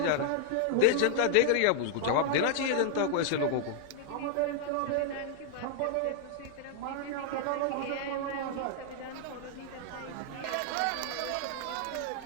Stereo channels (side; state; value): both; different; correlation -0.01